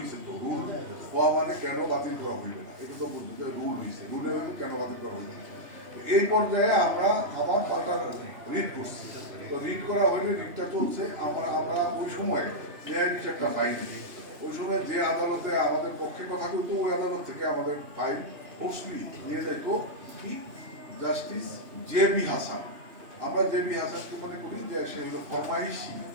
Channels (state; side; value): late; left; 2.9 ms